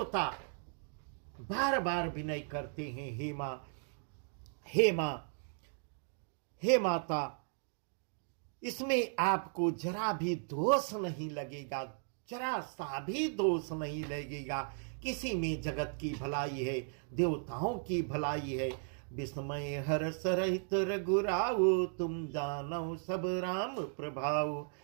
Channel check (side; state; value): left; silent; 54 dB below the other